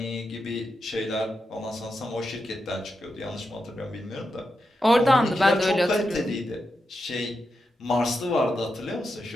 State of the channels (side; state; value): both; normal; correlation 0.87